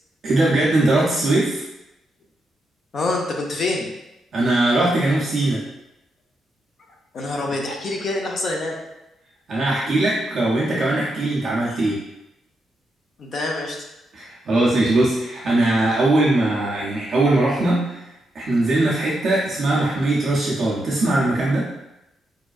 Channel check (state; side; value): normal; both; correlation 0.83